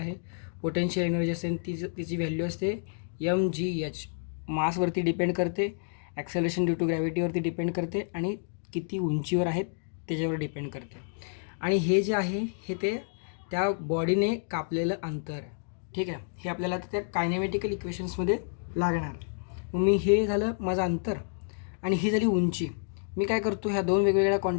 पोटेन्शियल एनर्जी असते, तिची व्हॅल्यू असते mgh. मासवरती डिपेंड करते, ॲक्सेलरेशन ड्यू टू ग्रॅव्हिटीवरती डिपेंड करते, आणि किती उंचीवर आहेत त्याच्यावर डिपेंड करते. आणि हे जे आहे हे ते त्या बॉडीने कापलेलं अंतर आहे. ठीक आहे. हे आपल्याला त्या कायनेमॅटिकल इक्वेशन्समध्ये लागणार. मग मी हे झालं माझं अंतर आणि ही झाली उंची. मी काय करतो, ह्या दोन वेगवेगळ्या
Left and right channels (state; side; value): silent; right; digital silence